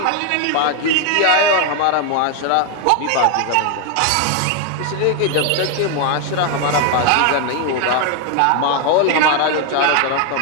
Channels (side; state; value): both; different; correlation 0.01